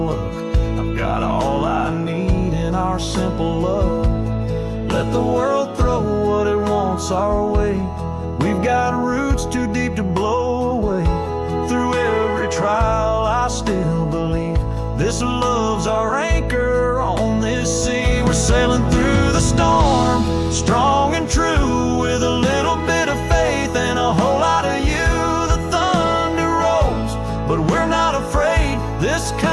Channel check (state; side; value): identical; both; correlation 1.00